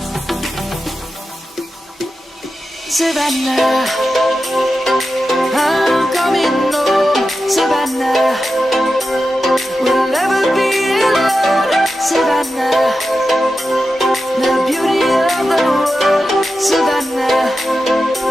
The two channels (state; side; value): normal; both; correlation 0.91